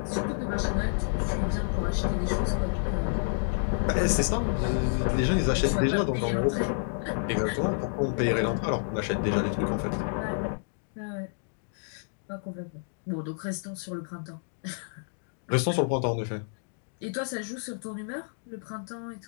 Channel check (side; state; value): right; silent; digital silence